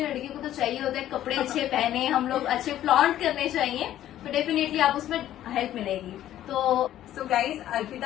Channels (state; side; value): quieter; right; 12.5 dB